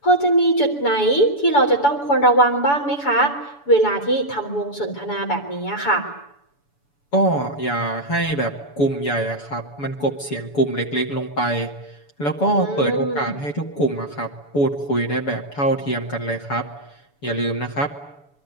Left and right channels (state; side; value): late; right; 7.0 ms